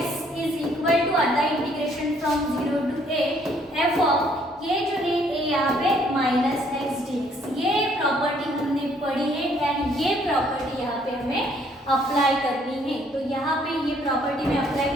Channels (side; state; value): both; normal; correlation 0.64